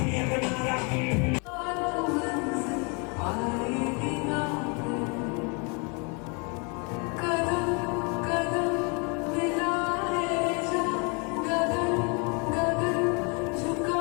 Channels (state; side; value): quieter; right; 33.7 dB